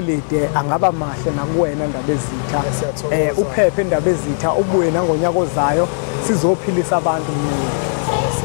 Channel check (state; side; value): silent; right; digital silence